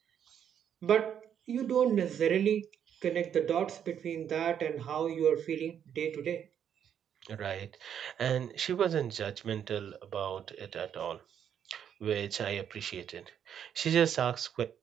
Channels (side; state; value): left; quieter; 8.9 dB